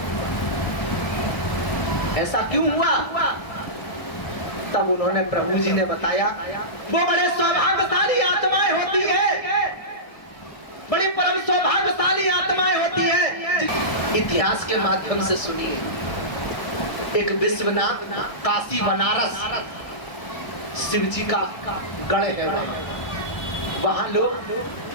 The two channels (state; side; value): late; right; 1.2 ms